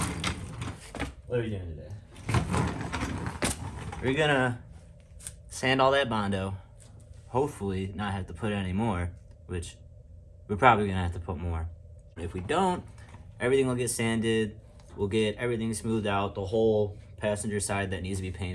what are we doing today? We're gonna sand all that Bondo. Hopefully not have to put any more, which we're probably gonna have to put more. If we don't, everything will get sanded. We'll get everything smoothed out. The whole passenger side that needs to be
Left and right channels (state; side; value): identical; both; correlation 1.00